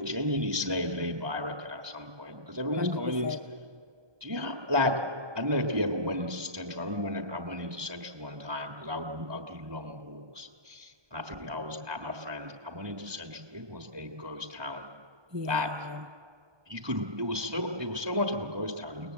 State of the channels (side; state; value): left; late; 1.2 ms